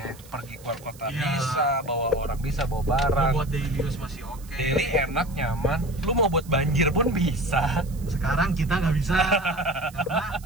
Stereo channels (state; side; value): noise; right; hiss, 22 dB below the sound